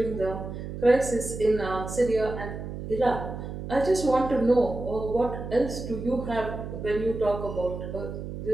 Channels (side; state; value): right; noise; hum, 8 dB below the sound